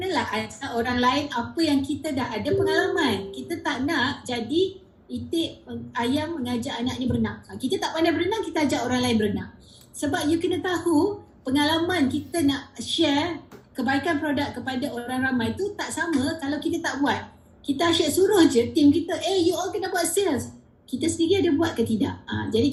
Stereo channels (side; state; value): both; identical; correlation 1.00